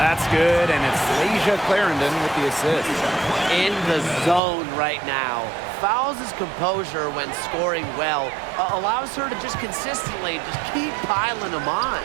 good, and it's Asia Clarendon with the assist. In the zone right now. Fouls his composure when scoring well. Allows her to just consistently just keep piling them on.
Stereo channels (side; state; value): left; drops out; at 4.4 s